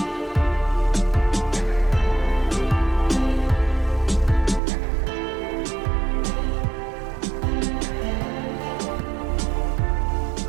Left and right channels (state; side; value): drops out; left; at 4.6 s